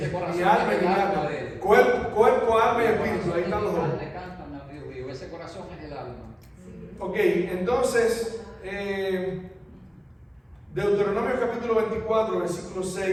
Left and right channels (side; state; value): both; identical; correlation 1.00